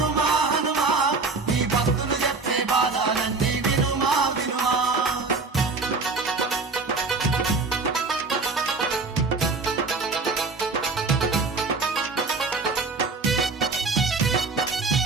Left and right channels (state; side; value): quieter; left; 4.1 dB